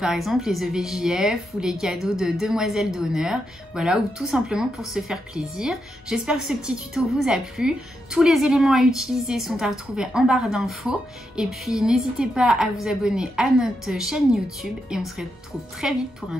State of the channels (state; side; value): normal; both; correlation 0.83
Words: exemple les EVJF ou les cadeaux de demoiselles d'honneur, voilà, ou tout simplement pour se faire plaisir. J'espère que ce petit tuto vous a plu. Tous les éléments à utiliser sont à retrouver en barre d'infos. Et puis n'hésitez pas à vous abonner à notre chaîne YouTube et on se retrouve très vite pour un